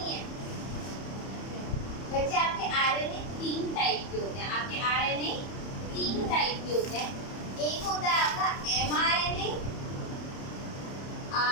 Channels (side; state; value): right; late; 30 ms